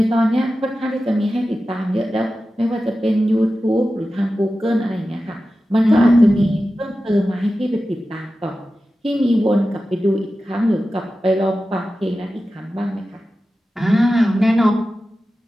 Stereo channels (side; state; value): both; normal; correlation 0.94